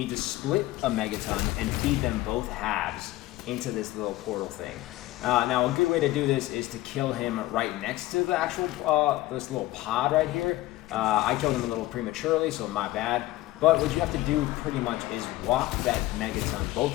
to split a megaton and feed them both halves into this little portal thing. Now, a good way to do this is to kill him right next to the actual this little pod right here. I killed him a little prematurely, so my bad. But what you have to do pretty much is walk that megaton, both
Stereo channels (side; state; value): right; quieter; 17.2 dB